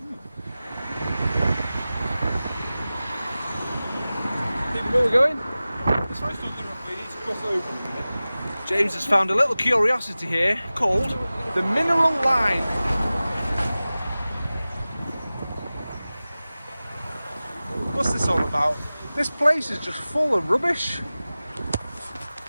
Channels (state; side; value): inverted; both; correlation -0.97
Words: Where are we going? This road's not good enough, we need to cross over a minute. James has found a little curiosity here called the Mineral Line. What's this all about? This place is just full of rubbish.